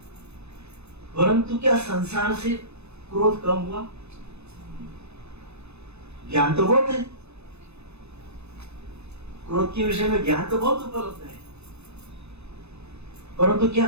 परंतु क्या संसार से क्रोध कम हुआ? ज्ञान तो बहुत है, क्रोध के विषय में ज्ञान तो बहुत उपलब्ध है, परंतु क्या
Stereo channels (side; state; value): left; late; 0.80 ms